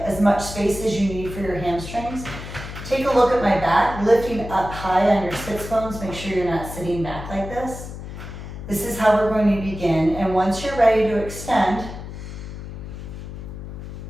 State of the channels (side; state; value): left; noise; hum, 10 dB below the sound